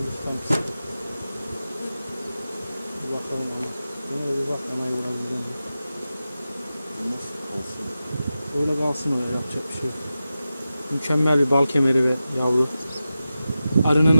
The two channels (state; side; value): inverted; both; correlation -0.93